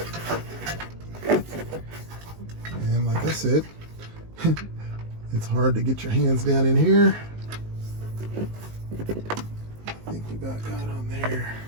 And like I said, it's hard to get your hands down in here. I think we got on there.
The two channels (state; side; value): late; left; 19 ms